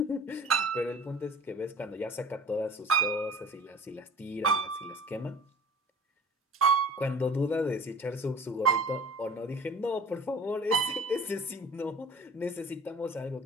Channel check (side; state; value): both; normal; correlation 0.44